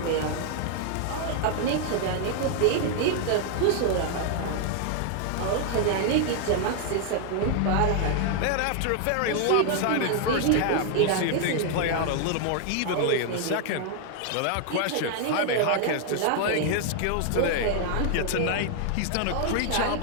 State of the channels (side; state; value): both; different; correlation 0.00